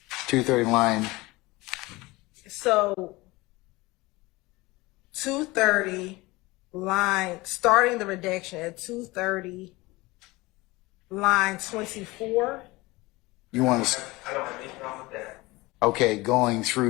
230 line. So 230 line, starting the redaction at 230 line 24. You want to? I don't have any problem with that. Okay, going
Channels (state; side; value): quieter; right; 21.7 dB